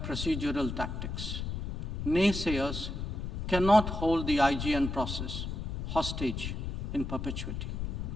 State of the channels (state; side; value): noise; left; rumble, 4 dB below the sound